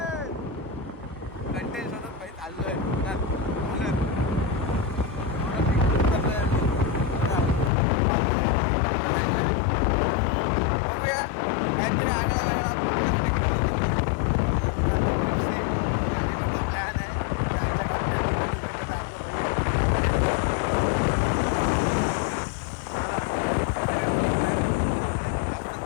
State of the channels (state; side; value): drops out; right; at 7.7 s